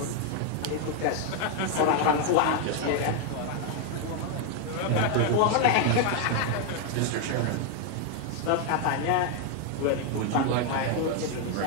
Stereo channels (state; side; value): different; both; correlation 0.01